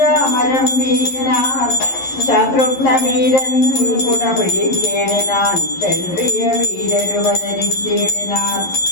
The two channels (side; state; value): right; late; 11 ms